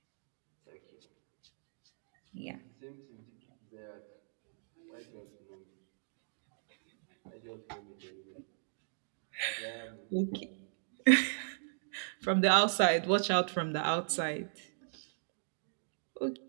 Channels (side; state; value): left; silent; digital silence